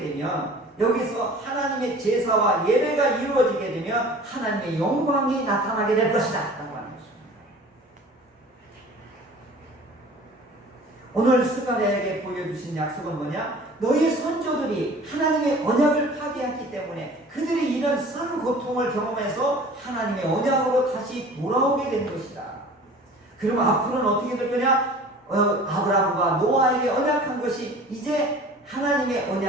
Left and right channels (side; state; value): both; normal; correlation 0.44